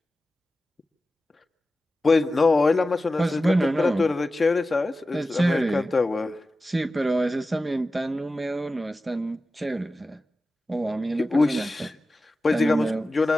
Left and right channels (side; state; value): both; normal; correlation 0.94